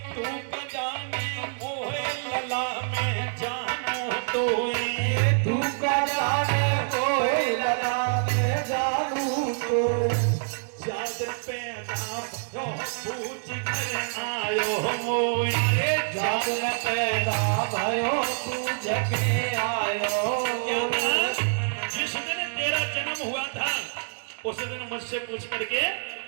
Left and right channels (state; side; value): silent; left; digital silence